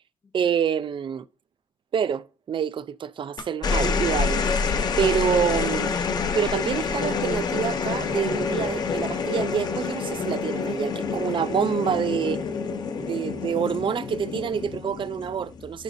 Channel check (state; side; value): normal; both; correlation 0.51